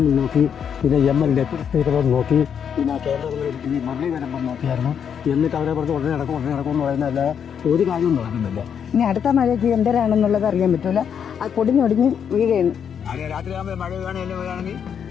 നോക്കി, പിന്നെ MLA സ്പീക്കറും നോക്കി, പിന്നെ കേന്ദ്രങ്ങളിൽ ഈ മുരളീധരൻ നോക്കിയായിരുന്നു. എന്നിട്ട് അവരെ പറഞ്ഞ് ഉടനെ നടക്കും എന്ന് പറയുന്നതല്ല, ഒരു കാര്യവും നടക്കുന്നില്ല. ഇനി അടുത്ത മഴയ്ക്ക് എന്തരാണെന്നുള്ളത് അറിയാൻ പറ്റൂല. അത് പൊടിഞ്ഞൊടിഞ്ഞ് വീഴുകയാണ്. രാത്രിയാകുമ്പോൾ മഴ വീഴുകയാണെങ്കിൽ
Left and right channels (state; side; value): quieter; right; 7.8 dB